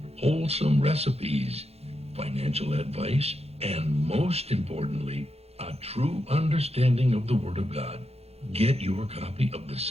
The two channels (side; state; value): left; late; 0.30 ms